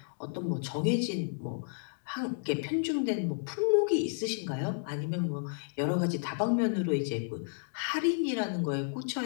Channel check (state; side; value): silent; right; digital silence